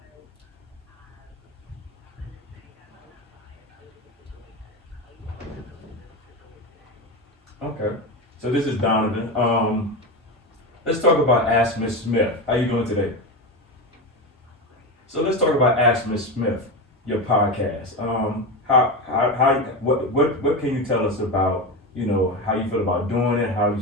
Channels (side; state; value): both; normal; correlation 0.19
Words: Okay. So this is Donovan. Let's talk about MsSmith. How you doing today? So let's talk about MsSmith, your podcast. What can you tell us about, how you feel about doing it, how